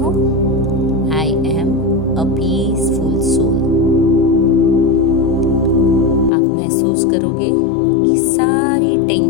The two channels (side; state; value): right; drops out; at 6.3 s